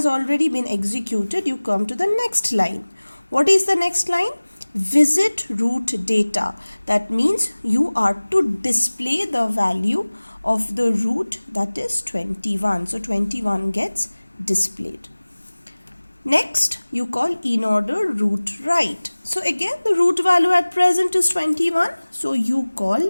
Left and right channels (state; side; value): inverted; both; correlation -1.00